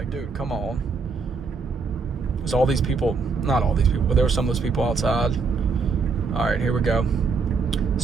dude, come on. There's all these people. Not all these people, but there were some of those people outside. All right, here we go.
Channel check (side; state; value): left; quieter; 4.7 dB